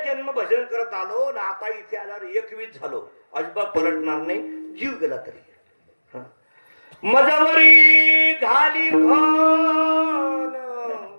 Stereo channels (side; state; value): both; inverted; correlation -1.00